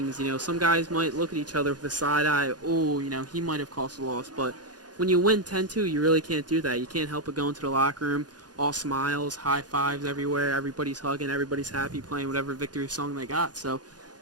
You know, some guys might look at each other with a side eye. Oh, you know, he might have caused a loss. But when you win 10-2, you really can't do that. You can't help but go into the locker room, all smiles, high fives everywhere. Everybody's hugging. Everybody's happy, playing whatever victory song they got. So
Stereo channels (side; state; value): left; late; 0.69 ms